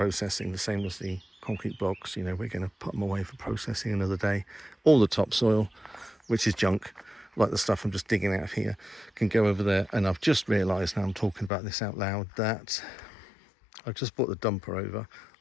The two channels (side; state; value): right; drops out; at 11.5 s